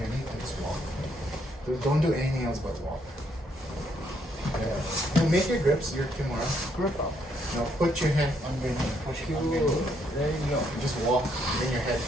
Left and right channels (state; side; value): normal; both; correlation 0.72